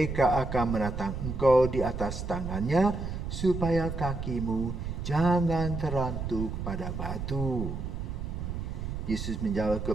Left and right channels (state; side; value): noise; right; rumble, 5 dB below the sound